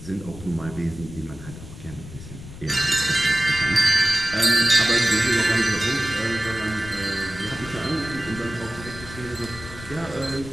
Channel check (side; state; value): left; noise; rumble, 14 dB below the sound